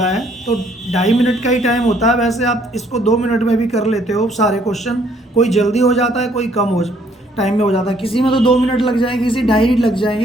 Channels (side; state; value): both; normal; correlation 0.65